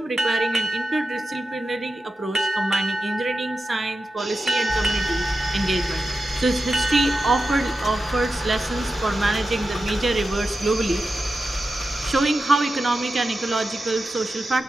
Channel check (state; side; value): normal; both; correlation 0.91